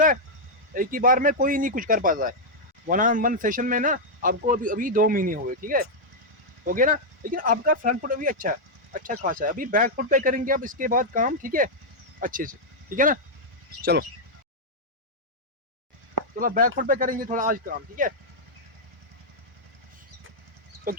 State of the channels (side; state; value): both; normal; correlation -0.04